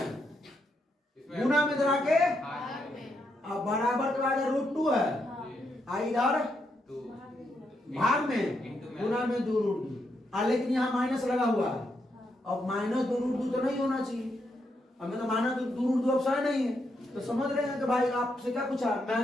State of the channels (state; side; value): normal; both; correlation 0.80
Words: गुना में इधर आके अब बराबर के बाद रूट 2 है, इधर भाग में गुना में 2 रूट 2, लेकिन यहाँ माइनस लगा हुआ है। अब माइनस 2 रूट 2 तो नहीं होना चाहिए, हमें तो माइनस 2 रूट 2 ऑप्शन नहीं है। तो समझ रहे हैं कि भाई आपसे क्या पूछा,